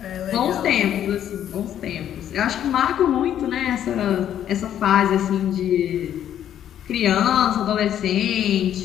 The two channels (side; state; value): right; quieter; 10.4 dB